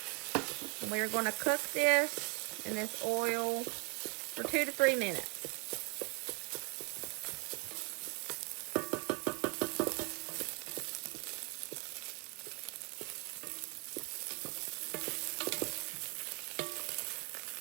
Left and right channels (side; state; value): left; quieter; 30.7 dB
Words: And we're going to cook this in this oil for 2 to 3 minutes.